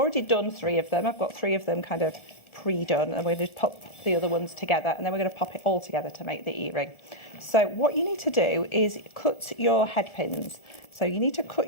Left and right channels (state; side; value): late; right; 1.4 ms